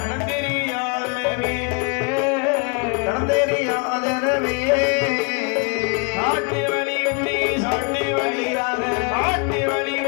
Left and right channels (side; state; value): right; quieter; 33.9 dB